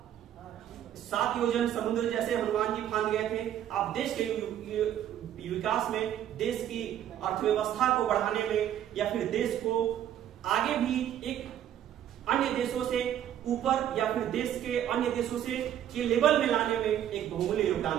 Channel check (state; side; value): quieter; left; 10.8 dB